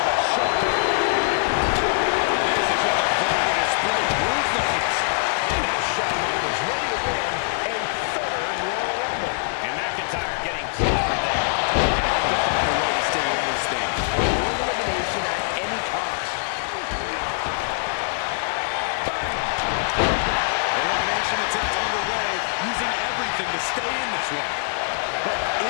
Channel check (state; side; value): silent; right; digital silence